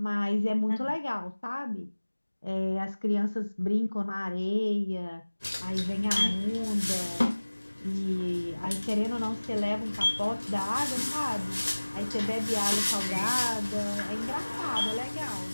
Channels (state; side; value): inverted; both; correlation -1.00